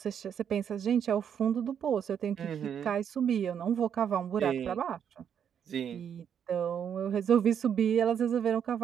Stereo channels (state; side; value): quieter; left; 8.3 dB